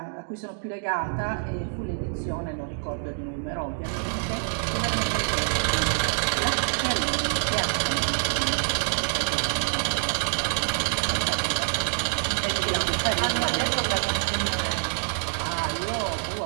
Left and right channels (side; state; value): left; silent; digital silence